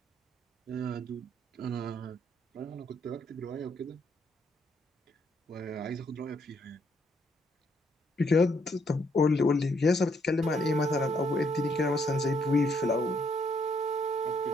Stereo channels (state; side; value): normal; both; correlation 0.72